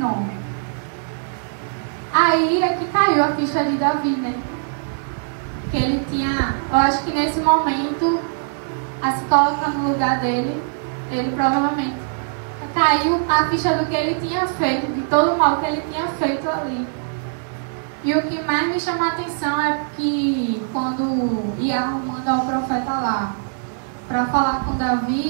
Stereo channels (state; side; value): silent; left; 65 dB below the other